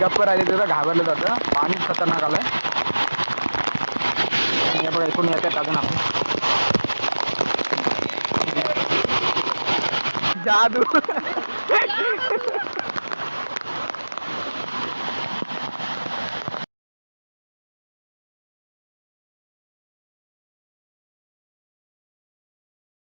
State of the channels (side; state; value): both; inverted; correlation -1.00